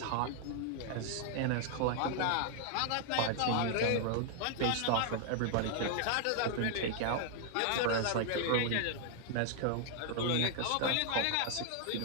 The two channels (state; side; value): different; both; correlation 0.00